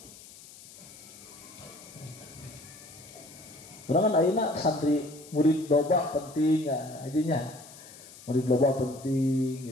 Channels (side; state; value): left; noise; hiss, 19 dB below the sound